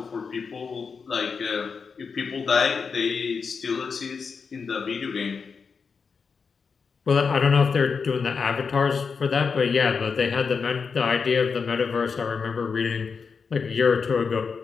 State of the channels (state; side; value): quieter; right; 5.5 dB